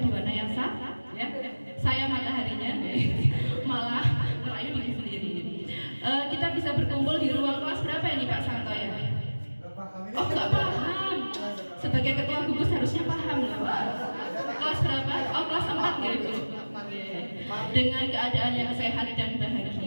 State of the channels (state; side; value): inverted; both; correlation -1.00